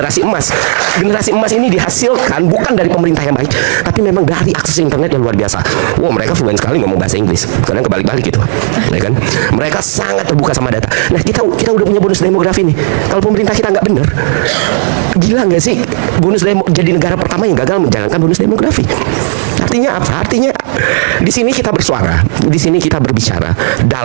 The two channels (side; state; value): left; silent; 68 dB below the other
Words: emas. Generasi emas ini dihasilkan bukan dari pemerintah yang baik, tapi memang dari akses internet yang luar biasa. Wow, mereka fluent sekali ngomong bahasa Inggris. Kadang kebalik-balik gitu, ya kan? Mereka sangat terbuka sama data. Nah, kita udah punya bonus demografi nih. Kalau pemerintah kita nggak benar, gila nggak sih? Jadi negara pertama yang gagal menjalankan bonus demografi. Artinya apa? Artinya di sini kita bersuara, di sini kita berbicara,